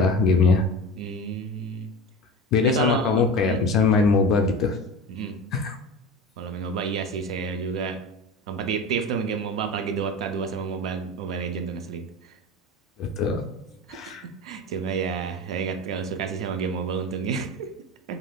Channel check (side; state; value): both; normal; correlation 0.30